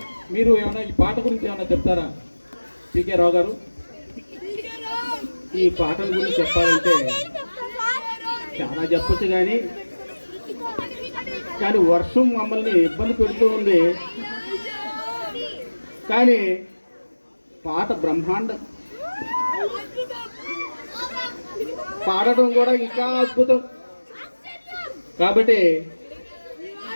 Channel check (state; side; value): inverted; both; correlation -1.00